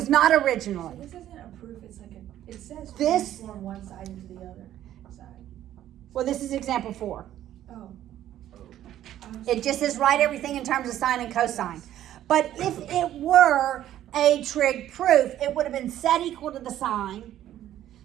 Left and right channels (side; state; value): left; quieter; 12.3 dB